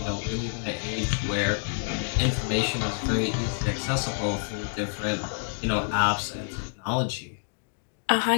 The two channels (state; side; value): silent; right; digital silence